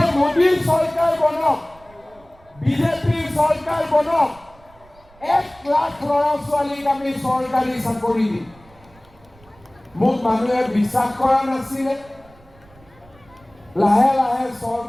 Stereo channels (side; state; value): right; noise; rumble, 27 dB below the sound